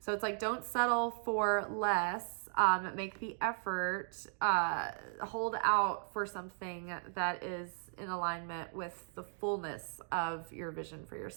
So it's like, don't settle for less. Make the effort, hold out for something that is in alignment with the fullness of your vision for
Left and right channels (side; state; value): left; silent; digital silence